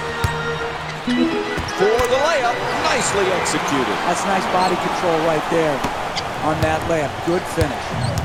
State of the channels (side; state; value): both; identical; correlation 1.00